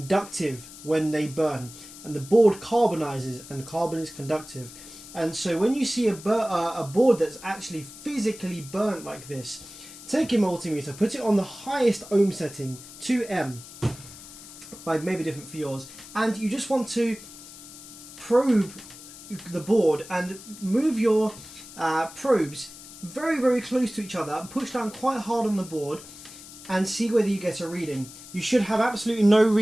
when they burn, and the board carbonizes, and carbon is conductive. And so when you see a board that's actually physically burnt like this, take your multimeter, put it on the highest ohm setting, 2M, maybe different for yours, and you just want to probe the board and move your probes very, very close to each other, push down quite hard on the board and see whether you get a reading. You should have absolutely no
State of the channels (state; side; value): noise; left; hiss, 16 dB below the sound